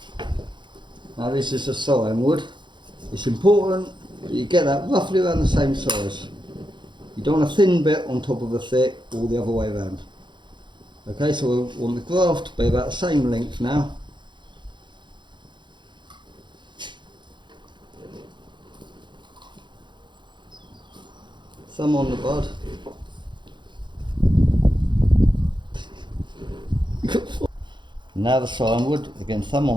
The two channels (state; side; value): late; left; 0.23 ms